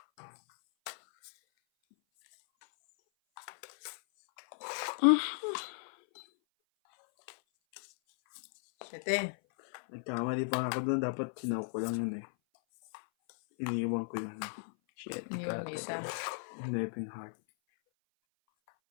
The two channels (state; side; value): silent; right; 54 dB below the other